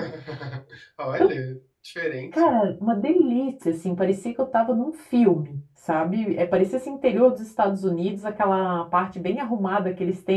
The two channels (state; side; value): identical; both; correlation 1.00